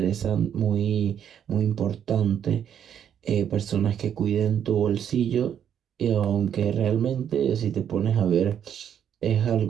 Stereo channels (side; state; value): left; quieter; 9.0 dB